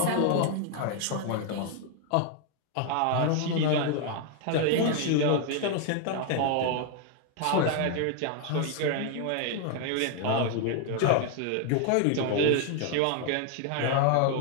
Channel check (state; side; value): different; both; correlation 0.00